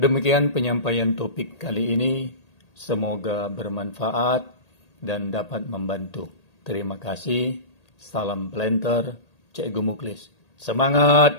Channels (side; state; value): right; late; 1.8 ms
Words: penyampaian topik kali ini, semoga bermanfaat dan dapat membantu. Terima kasih, salam planter, Cikgu Muklis. Semangat